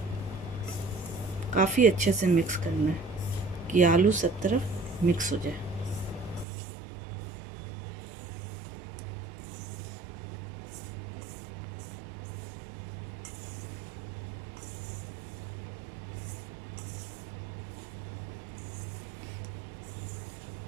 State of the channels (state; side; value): drops out; left; at 6.5 s